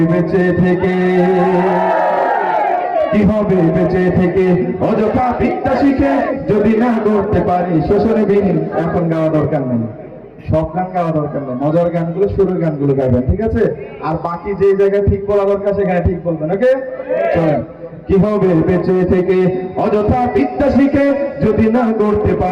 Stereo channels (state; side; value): identical; both; correlation 1.00